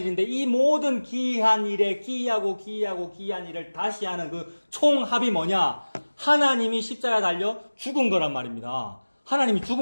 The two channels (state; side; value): inverted; both; correlation -1.00